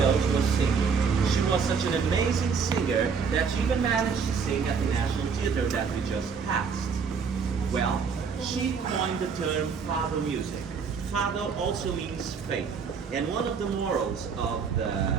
was singing. She was such an amazing singer that she even managed to sing at the National Theatre that we just passed. Well, she coined the term Fado music. Fado also means faith, and one of the morals of the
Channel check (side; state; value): left; quieter; 5.9 dB